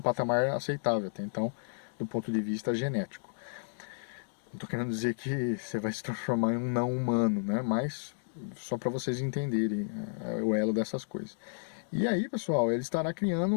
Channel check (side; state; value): right; silent; digital silence